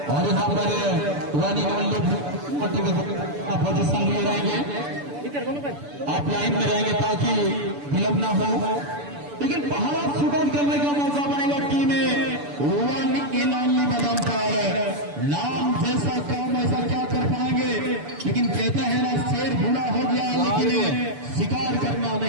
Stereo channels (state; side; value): late; left; 6.9 ms